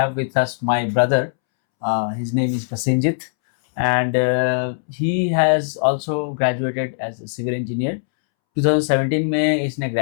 with us my brother. His name is Prasenjit, and he has also graduated as a civil engineer. 2017 में इसने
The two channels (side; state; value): right; silent; 66 dB below the other